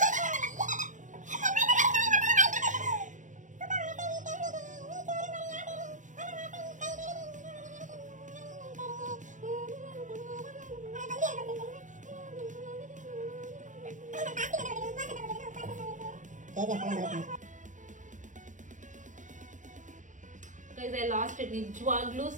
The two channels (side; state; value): left; late; 0.36 ms